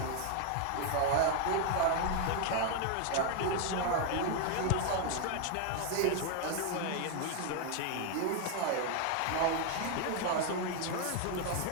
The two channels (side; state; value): both; different; correlation 0.01